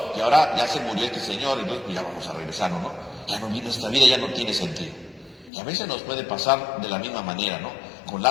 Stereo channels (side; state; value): right; drops out; at 5.5 s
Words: y ahora ya se murió este Señor, y entonces pues ya vamos a regresarnos, ¿no? Ya no, nuestra vida ya no tiene sentido. Y a veces nos puede pasar de la misma manera, ¿no? Con